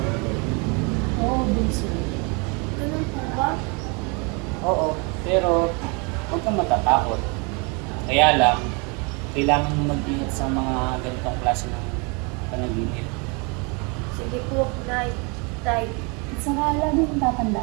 Oo, bunso. Ganun po ba? Oo, pero huwag kang matatakot. Kaya lang, kailangan mo mag-ingat sa mga ganitong klase ng panaginip. Sige po, Nay. Tay. At saka lagi kong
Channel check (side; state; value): left; quieter; 31.8 dB